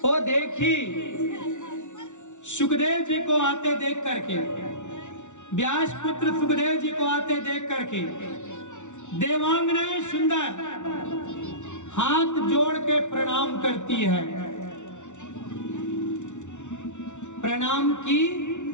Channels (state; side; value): late; right; 0.85 ms